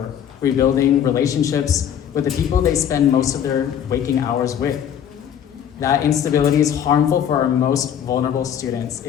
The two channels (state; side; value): quieter; right; 9.2 dB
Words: rebuilding relationships with the people they spend most of their waking hours with. That instability is harmful for our most vulnerable students.